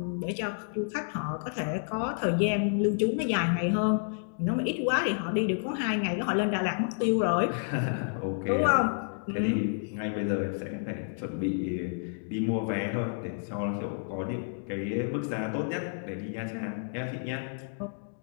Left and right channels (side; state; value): right; silent; digital silence